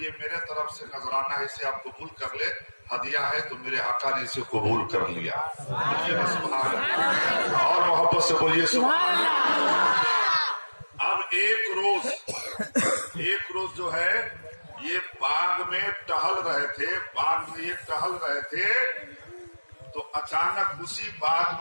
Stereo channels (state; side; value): inverted; both; correlation -1.00